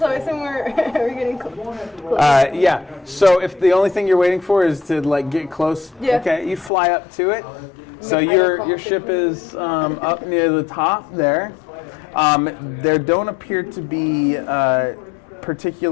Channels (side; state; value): right; drops out; at 6.7 s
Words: I assume we're getting close. Yeah. So if the only thing you're waiting for is to like get close, Yeah. okay, you fly up to it. So I your don't your ship is up near the top there. There don't appear to be